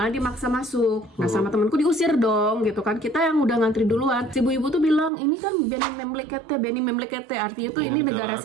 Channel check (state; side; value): drops out; left; at 5.1 s